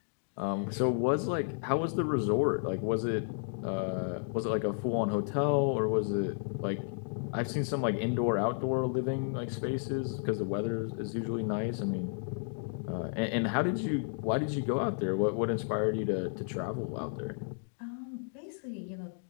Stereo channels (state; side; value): silent; right; digital silence